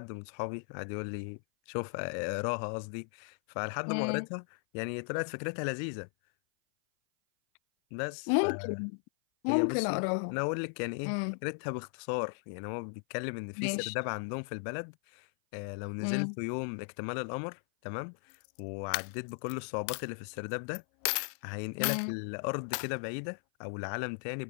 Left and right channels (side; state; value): right; silent; 54 dB below the other